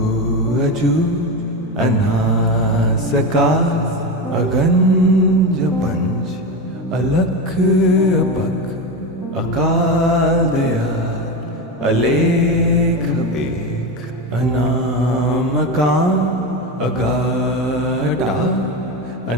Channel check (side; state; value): both; normal; correlation 0.18